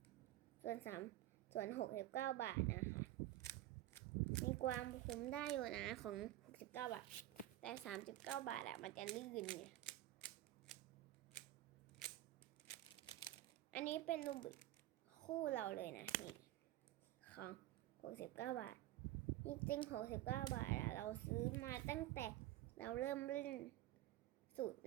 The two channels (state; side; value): quieter; left; 14.9 dB